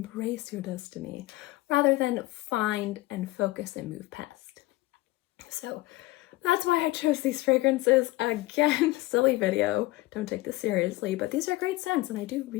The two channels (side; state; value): right; quieter; 19.3 dB